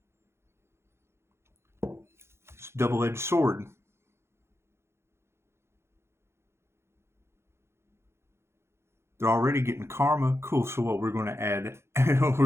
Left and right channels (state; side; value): late; left; 0.13 ms